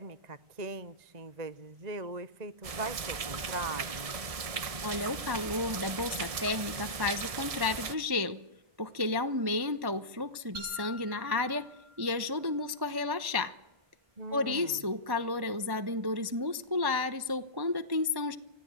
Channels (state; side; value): late; left; 1.1 ms